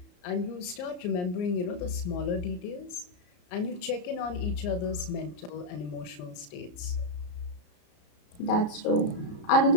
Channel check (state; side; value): late; right; 34 ms